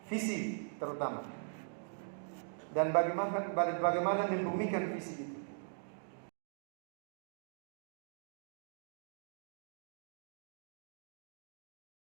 Visi terutama. Dan bagaimana membumikan visi itu.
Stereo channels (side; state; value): left; silent; digital silence